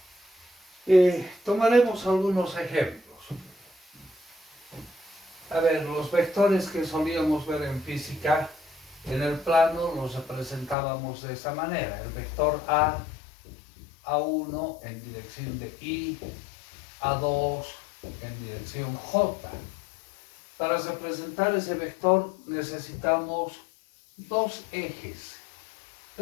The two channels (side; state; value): right; drops out; at 10.8 s